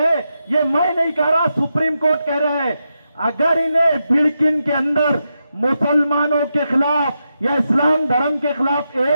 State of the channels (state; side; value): inverted; both; correlation -0.86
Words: ये मैं नहीं कह रहा, सुप्रीम कोर्ट कह रहा है। अगर इन्हें बिड़किन के अंदर मुसलमानों के खिलाफ या इस्लाम धर्म के खिलाफ